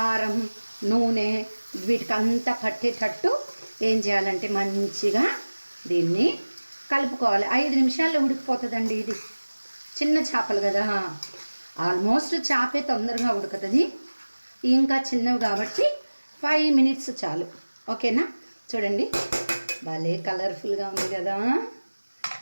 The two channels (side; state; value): both; inverted; correlation -1.00